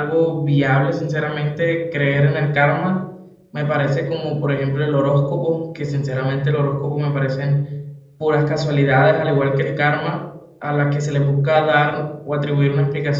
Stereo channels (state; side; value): identical; both; correlation 1.00